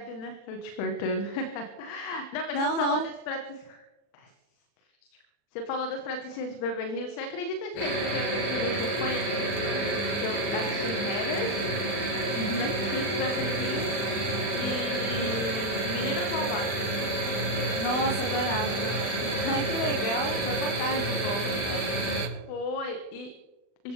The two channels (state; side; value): late; right; 40 ms